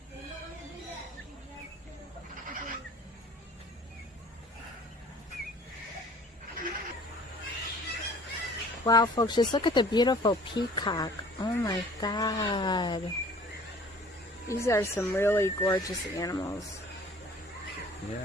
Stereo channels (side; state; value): both; normal; correlation 0.50